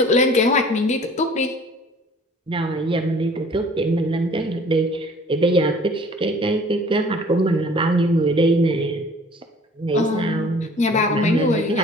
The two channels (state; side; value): normal; both; correlation 0.51